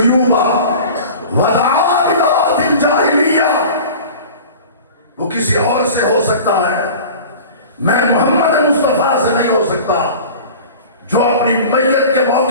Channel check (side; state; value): both; inverted; correlation -0.39